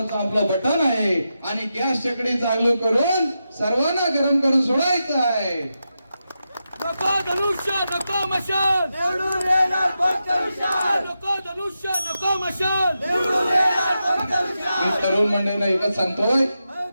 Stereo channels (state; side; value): inverted; both; correlation -0.89